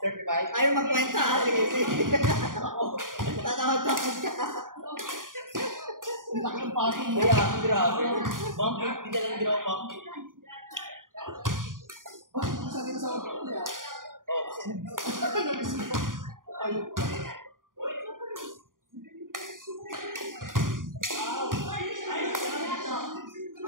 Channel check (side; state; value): left; late; 0.90 ms